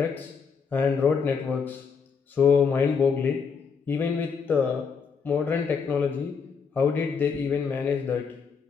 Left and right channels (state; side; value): quieter; right; 5.9 dB